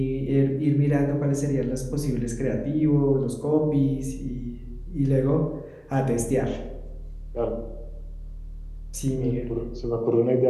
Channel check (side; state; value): both; identical; correlation 1.00